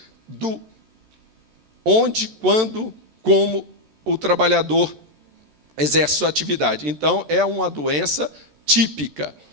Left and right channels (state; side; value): late; left; 13 ms